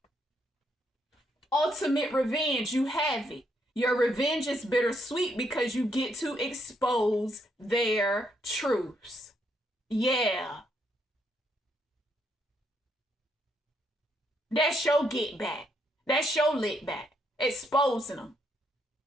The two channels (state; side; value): normal; both; correlation 0.75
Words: Ultimate revenge, you have it. Your revenge is bittersweet because you get to expose their truths. Yeah. That's your get back. That's your lit back. Exposing them.